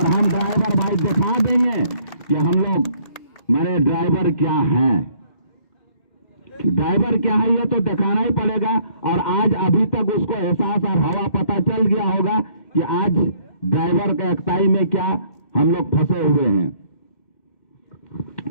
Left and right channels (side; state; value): right; late; 2.2 ms